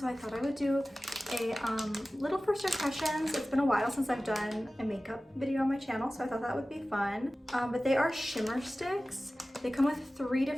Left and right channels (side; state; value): both; normal; correlation 0.96